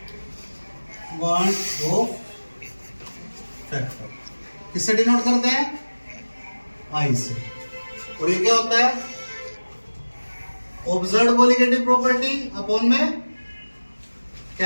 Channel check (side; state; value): both; inverted; correlation -1.00